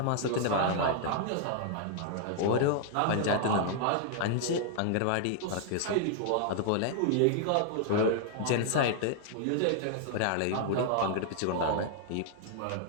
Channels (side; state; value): both; different; correlation 0.00